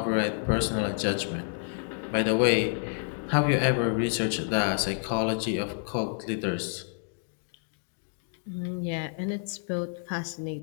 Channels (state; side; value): silent; right; 57 dB below the other